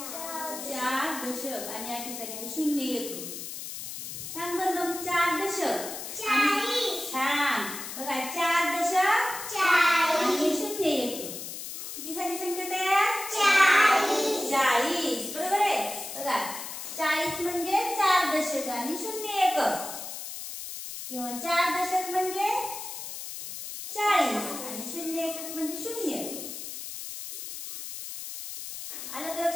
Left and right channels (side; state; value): left; noise; hiss, 8 dB below the sound